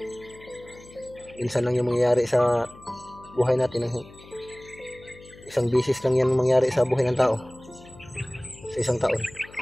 Minsan lang yung mangyayari sa buhay natin, isang bisis lang yan mangyari sa buhay ng tao sa isang taon.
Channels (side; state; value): left; noise; hum, 21 dB below the sound